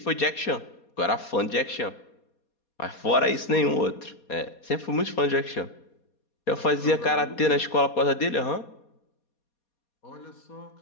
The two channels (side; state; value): right; late; 4.2 ms